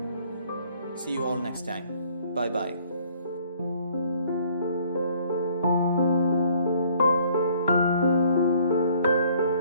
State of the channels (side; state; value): both; inverted; correlation -0.60